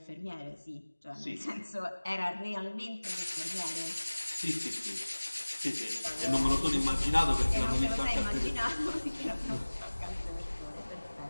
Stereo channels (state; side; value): inverted; both; correlation -1.00